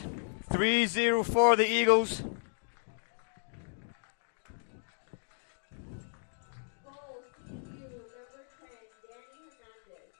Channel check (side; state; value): right; silent; digital silence